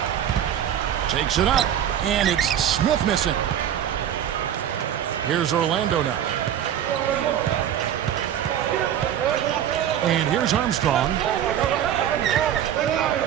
Takes it up. And it's Smith missing. Here's Orlando now. And here's Armstrong.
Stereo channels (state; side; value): quieter; left; 10.2 dB